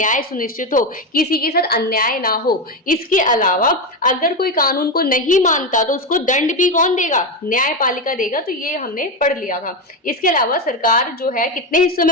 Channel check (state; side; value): normal; both; correlation 0.13